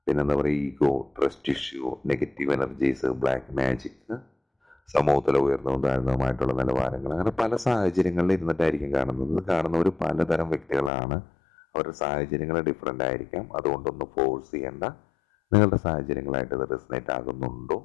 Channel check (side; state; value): right; drops out; at 10.9 s